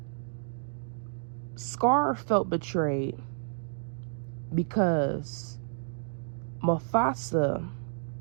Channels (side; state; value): left; silent; digital silence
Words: Scar felt betrayed because Mufasa